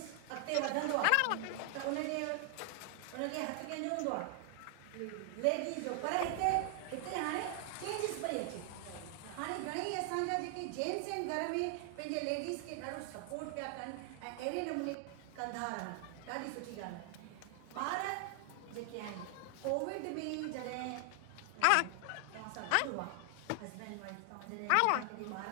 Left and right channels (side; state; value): both; different; correlation 0.00